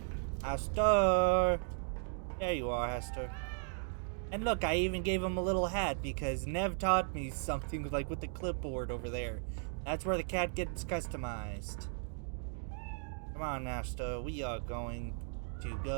Hester! There you are, Hester. And look, I even gave him a little hat because Nev taught me something like with the clipboard over there. That's where the cat gets customized. Come on, Hester, we are going to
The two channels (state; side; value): silent; left; 54 dB below the other